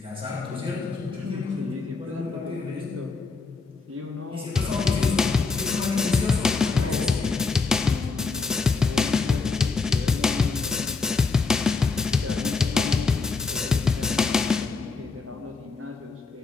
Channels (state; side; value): quieter; right; 4.4 dB